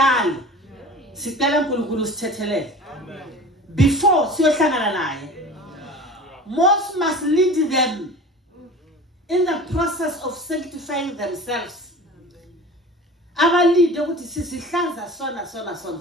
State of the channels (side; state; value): both; normal; correlation 0.38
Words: sicela uNkulunkulu sithethelele before siyohlangana naye. Most must lead them in the process of sanctifying themselves. Abalide ukuthi sisihlanza sona.